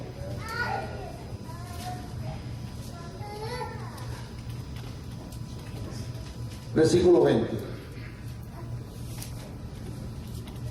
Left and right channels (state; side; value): identical; both; correlation 1.00